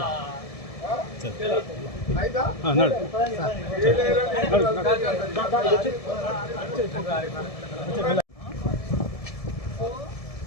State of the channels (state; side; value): late; right; 1.7 ms